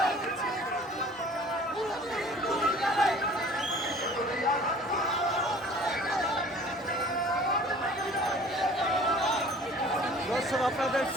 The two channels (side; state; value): both; normal; correlation 0.49